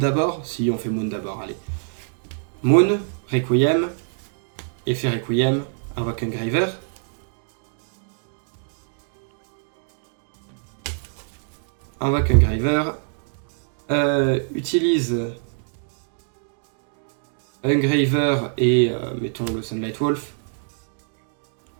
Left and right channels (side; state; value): left; silent; digital silence